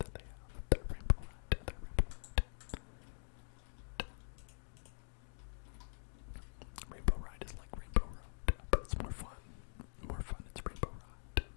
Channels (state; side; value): silent; right; digital silence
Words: they have. The rainbow ride.